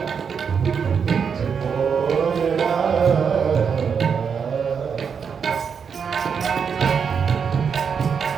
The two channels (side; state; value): left; quieter; 6.5 dB